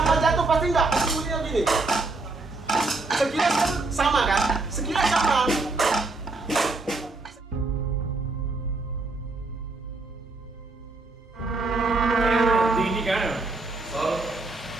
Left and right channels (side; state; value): left; quieter; 3.5 dB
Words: jatuh pasti enggak. Bunyinya gini. Sekilas kan sama kan? Sekilas sama. Tinggi kan?